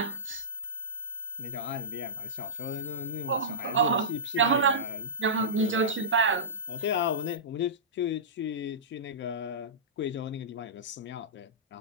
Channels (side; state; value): both; normal; correlation -0.18